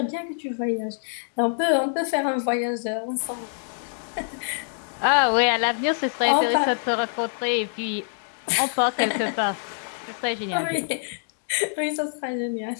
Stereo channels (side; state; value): right; silent; digital silence